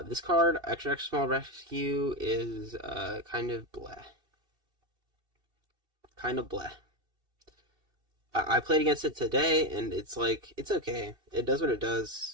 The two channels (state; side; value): late; left; 2.7 ms